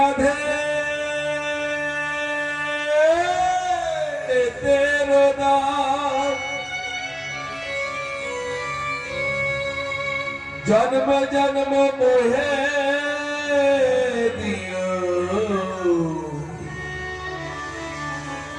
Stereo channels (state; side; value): identical; both; correlation 1.00